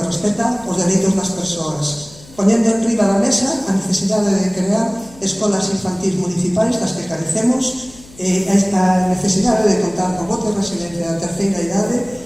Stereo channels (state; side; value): noise; left; hum, 22 dB below the sound